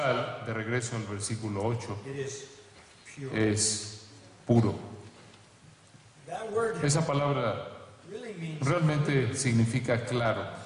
de regreso al versículo 8, it is pure. es puro. That word Esa palabra really means realmente significa claro,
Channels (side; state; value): both; identical; correlation 1.00